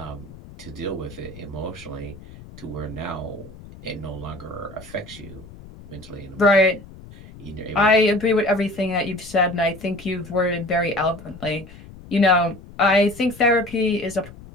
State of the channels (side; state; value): left; noise; rumble, 18 dB below the sound